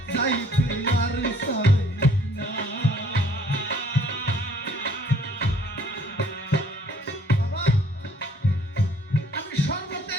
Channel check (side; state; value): both; normal; correlation 0.59